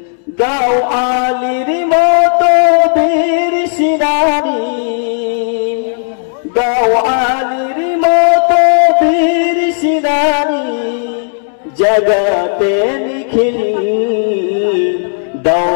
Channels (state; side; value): silent; right; digital silence